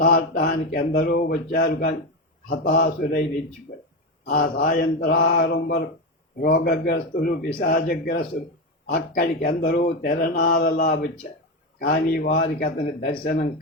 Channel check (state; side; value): normal; both; correlation 0.14